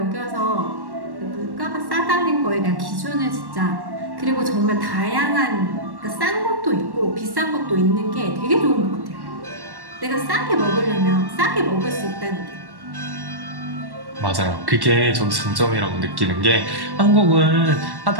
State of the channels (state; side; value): late; left; 1.1 ms